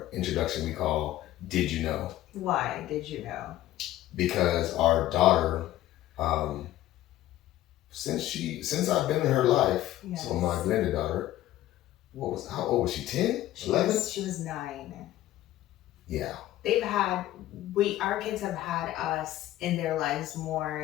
introduction we call Did You Know? Why did you know? Because our daughter, since I've been in her life, Yes. so my blended daughter, how old was she? 10? 11? She was 9. Yeah. Our kids have had us in their lives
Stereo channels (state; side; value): quieter; right; 14.6 dB